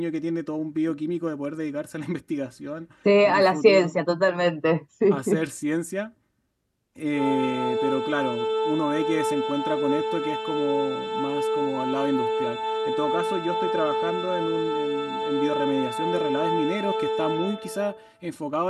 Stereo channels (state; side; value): identical; both; correlation 1.00